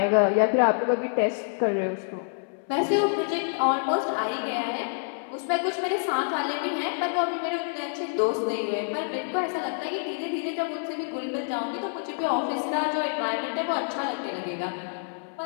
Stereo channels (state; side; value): silent; right; 60 dB below the other